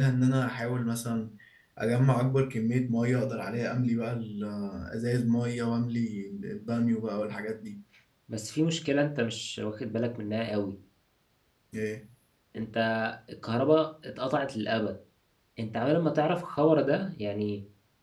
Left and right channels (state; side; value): identical; both; correlation 1.00